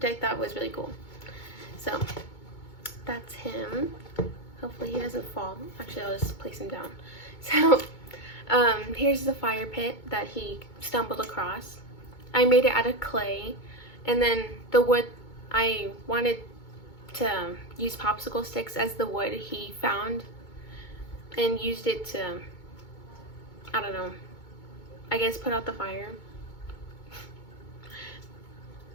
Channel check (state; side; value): late; right; 2.2 ms